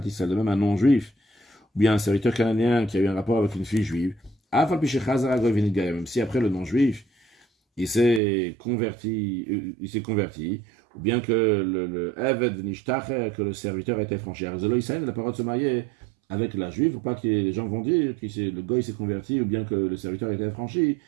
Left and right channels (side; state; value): left; drops out; at 8.2 s